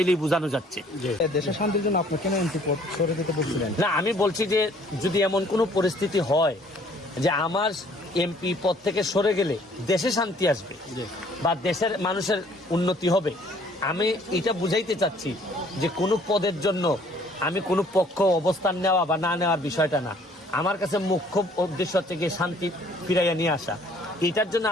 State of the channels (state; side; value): normal; both; correlation 0.58